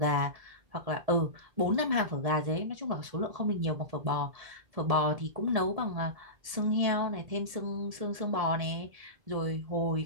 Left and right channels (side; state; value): left; late; 1.7 ms